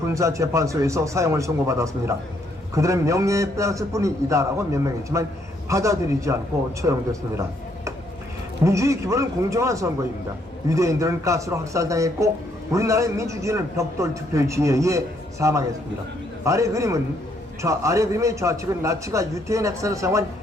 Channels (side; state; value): both; normal; correlation 0.71